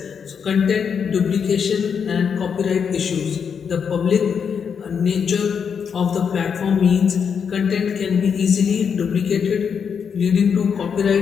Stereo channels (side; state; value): right; quieter; 6.8 dB